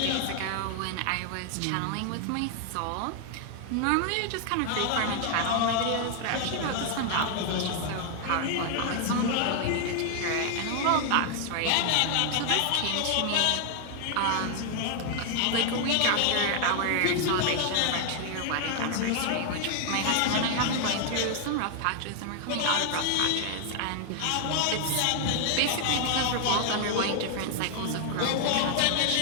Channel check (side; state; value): both; different; correlation 0.00